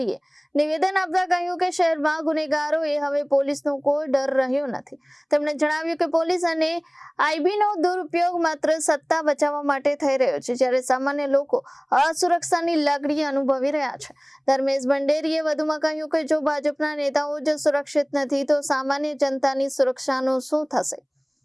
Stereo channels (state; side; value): identical; both; correlation 1.00